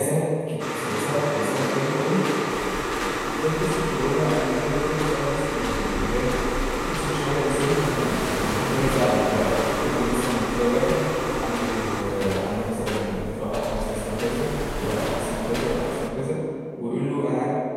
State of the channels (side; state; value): both; identical; correlation 1.00